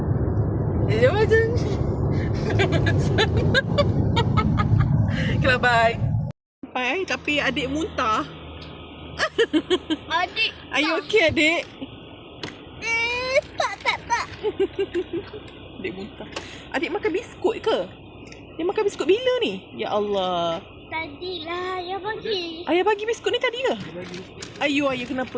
dia macam okey lah, bye. Sampai tapi adik muntah. Adik. Are you okay, adik? Tak. Adik muntah. Adik makan biskut ke? Dia makan biskut bila ni? Ya Allah. Tadilah ayah bagi. Ayah bagi biskut ni tadi ke? Ayah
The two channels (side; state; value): both; identical; correlation 1.00